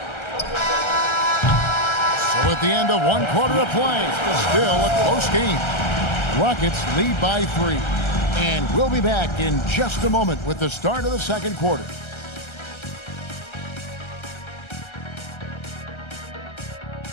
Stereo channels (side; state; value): right; late; 1.3 ms